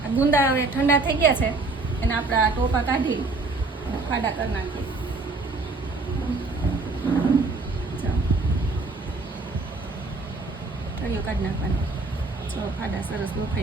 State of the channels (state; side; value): quieter; left; 3.5 dB